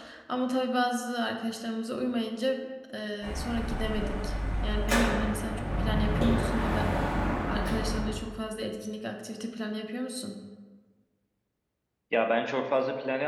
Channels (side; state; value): both; identical; correlation 1.00